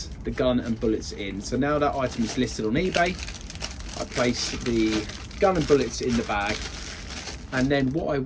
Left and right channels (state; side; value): identical; both; correlation 1.00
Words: the gun and bullets in. So now that item is listed on eBay, I place the gun and bullets in the bag, and then what I